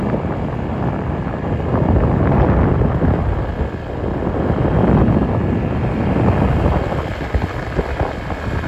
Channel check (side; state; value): both; identical; correlation 1.00